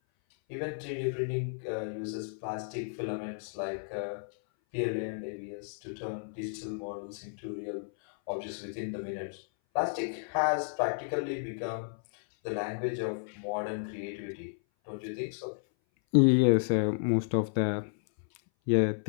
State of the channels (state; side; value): silent; right; 56 dB below the other